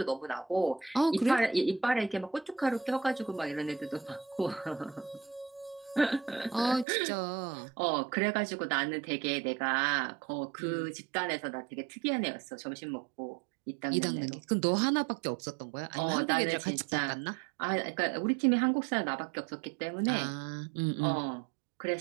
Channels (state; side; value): drops out; left; at 6.9 s